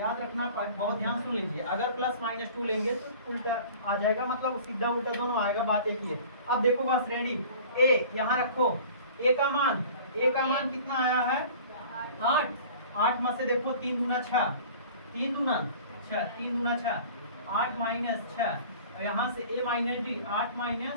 रखना, बहुत ध्यान सुन लीजिए, अगर प्लस माइनस 2 लेंगे तो उल्टा आ जाएगा, मतलब सीधा उल्टा दोनों आएगा, बात एक ही है। अब देखो बस रेडी, a यहाँ रखो, a का मान कितना आया है? 8 में से देखो 3 दूना 6, 3 दूना 6, 8 माइनस 6, और यहाँ से a माइनस डी, 8 माइनस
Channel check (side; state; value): both; inverted; correlation -0.44